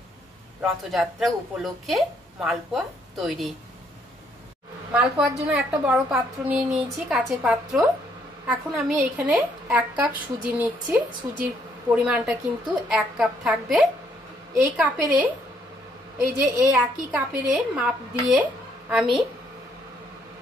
রথযাত্রা উপলক্ষে মালপোয়া তৈরি। মালপোয়ার জন্য একটা বড় পাত্র নিয়ে নিয়েছি, কাচের পাত্র। এখন আমি এখানে 1 কাপ সুজি নিচ্ছি। সুজির পরিমাণটা কিন্তু 1 কাপ থাকবে। এই কাপেরে, এই যে এই একই কাপেরে মাপ দিয়ে আমি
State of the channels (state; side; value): normal; both; correlation 0.69